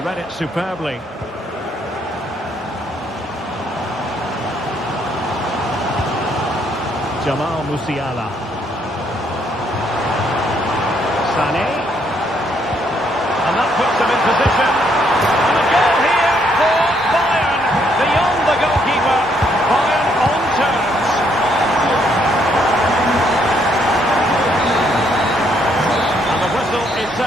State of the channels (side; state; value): both; normal; correlation 0.71